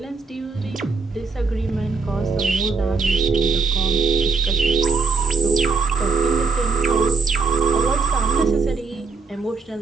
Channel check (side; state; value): left; quieter; 4.5 dB